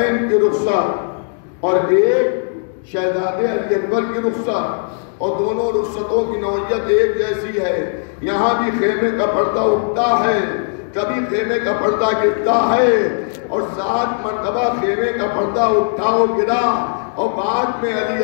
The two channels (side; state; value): right; silent; 68 dB below the other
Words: کی رخصت اور ایک شہزادے علی اکبر کی رخصت، اور دونوں رخصتوں کی نوعیت ایک جیسی ہے۔ یہاں بھی خیمے کا پردہ اٹھتا ہے، کبھی خیمے کا پردہ گرتا ہے، اور 7 مرتبہ خیمے کا پردہ اٹھا و گرا، اور بعد میں علی